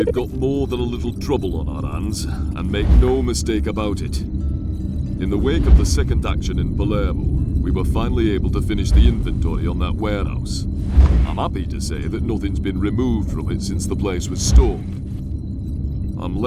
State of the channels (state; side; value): identical; both; correlation 1.00